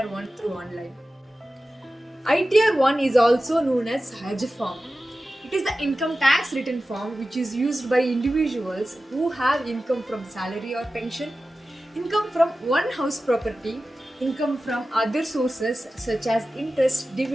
1 through online. ITR 1 is also known as Hajj form. It is the income tax return form which is used by individuals who have income from salary or pension, income from one house property, income from other sources such as interest,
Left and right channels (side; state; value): both; normal; correlation 0.94